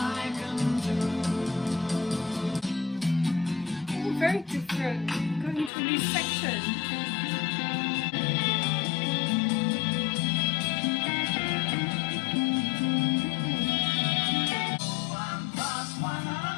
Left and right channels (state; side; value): drops out; right; at 5.7 s